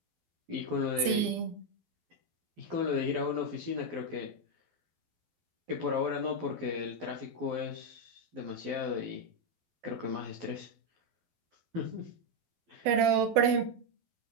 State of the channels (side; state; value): left; late; 12 ms